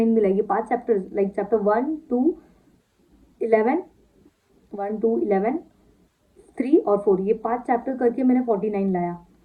मिला। ये 5 चैप्टर लाइक चैप्टर 1, 2, 11, 1, 2, 11, 3 और 4, ये 5 चैप्टर करके मैंने 49 लाया।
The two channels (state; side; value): identical; both; correlation 1.00